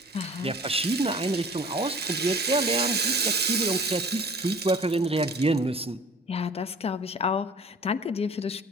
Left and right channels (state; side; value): normal; both; correlation 0.46